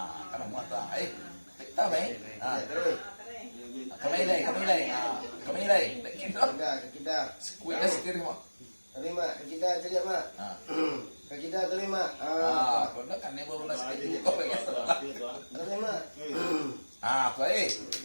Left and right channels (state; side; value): inverted; both; correlation -1.00